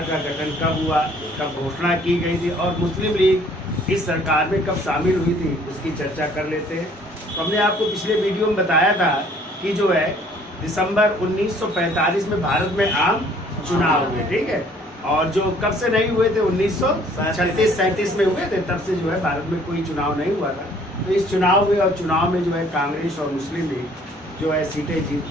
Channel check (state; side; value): normal; both; correlation 0.58